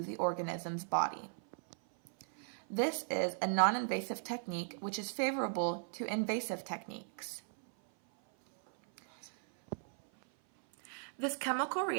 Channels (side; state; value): left; silent; 53 dB below the other